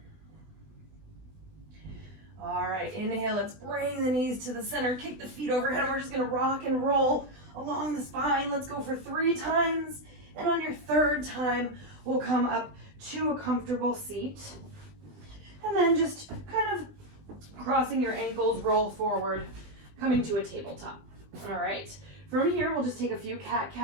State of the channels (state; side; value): late; left; 20 ms